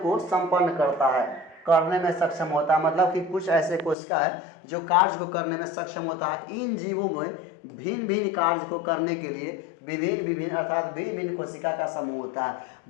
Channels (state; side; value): drops out; right; at 4.0 s